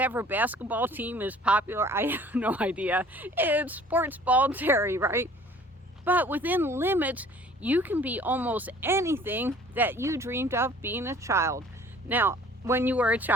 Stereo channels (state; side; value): normal; both; correlation 0.51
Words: basketball team is popular. I have no idea. It's sports ball Terry, right? But within limits, you can be almost anything that you dreamed of being a child. Now, when you were a